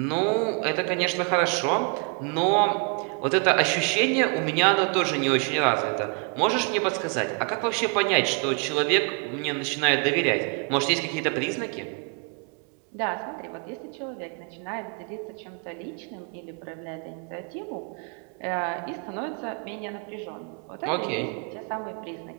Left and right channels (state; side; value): quieter; left; 37.2 dB